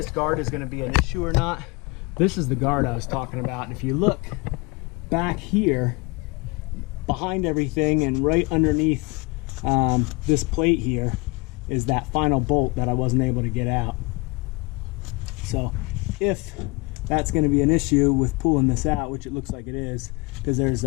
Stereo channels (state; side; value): quieter; right; 27.1 dB